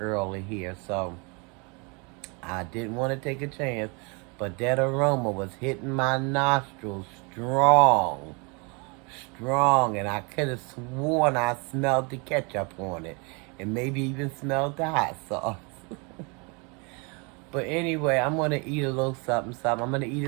here, so I didn't want to take a chance. But that aroma was hitting my nostrils strong, strong, and I could have sworn I smelled the ketchup on it, and maybe even smelled the hot sauce. But anyway, I'm gonna eat a little something, something. I'm gonna eat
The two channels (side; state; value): left; quieter; 31.6 dB